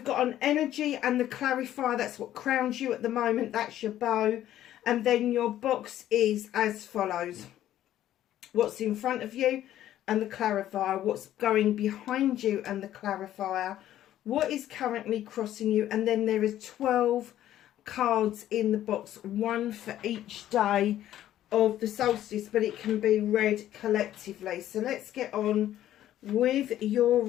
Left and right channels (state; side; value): quieter; right; 12.5 dB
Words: got an energy and the clarifier. That's what crowns you at the moment. That's your bow. And then your box is as follows. What's in front of you and the clarifier, what's going behind you and the clarifier, what is currently crossing you, and then there is 12 cards in the box, one for each day of the solstice, but it can be read collectively. So let's get on with your